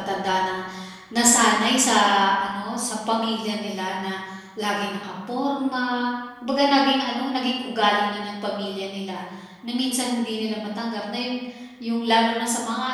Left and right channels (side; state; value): both; identical; correlation 1.00